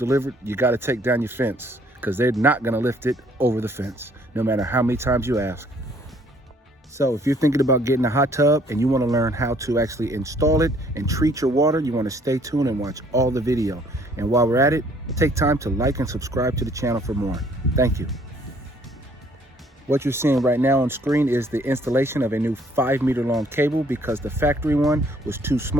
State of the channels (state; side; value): normal; both; correlation 0.61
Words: you got to take down your fence, because they're not going to lift it over the fence, no matter how many times you ask. So if you're thinking about getting a hot tub and you want to learn how to actually install it and treat your water, you want to stay tuned and watch all the video. And while we're at it, take time to like and subscribe to the channel for more. Thank you. What you're seeing right now on screen is the installation of a new 5-meter long cable, because the factory one was too